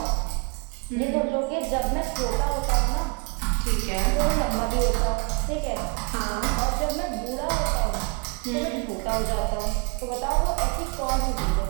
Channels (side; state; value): left; quieter; 31.5 dB